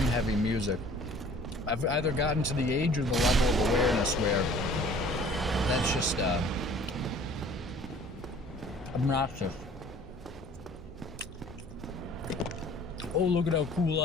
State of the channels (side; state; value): both; normal; correlation 0.50